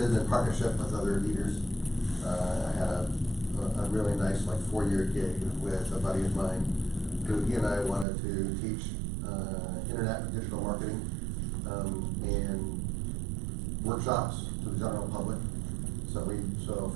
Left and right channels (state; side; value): drops out; left; at 8.1 s